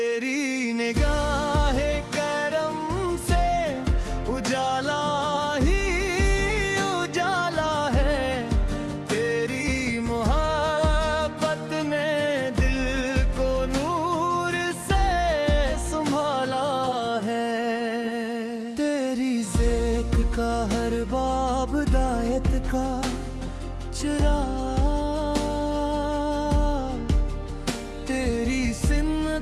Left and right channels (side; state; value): both; identical; correlation 1.00